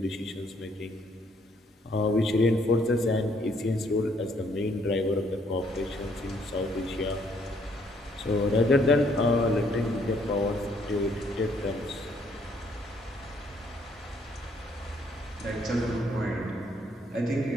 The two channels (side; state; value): both; normal; correlation 0.67